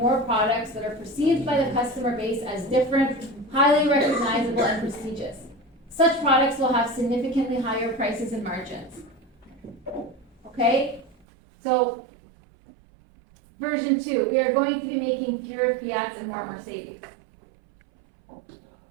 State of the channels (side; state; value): left; drops out; at 11.2 s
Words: products that are perceived by the customer base as different, highly recognizable, and prestigious. Such products will have significantly higher prices and margins. Okay, so version 2, we are going to be making fewer Fiats and more Mercedes.